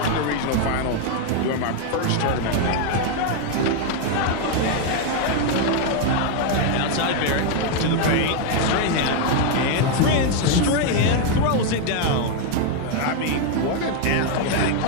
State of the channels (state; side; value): different; both; correlation 0.01